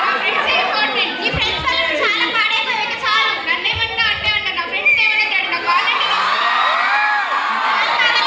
నీ ఫ్రెండ్స్ వల్ల చాలా పాడైపోయాక చాలు. నన్నేమన్నా అంటే అంట, నా ఫ్రెండ్స్ ఏమన్నా డాడీ, నాకు కావాలంటే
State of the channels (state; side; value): identical; both; correlation 1.00